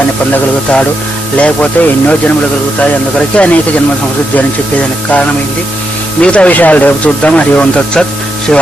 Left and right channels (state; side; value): normal; both; correlation 0.82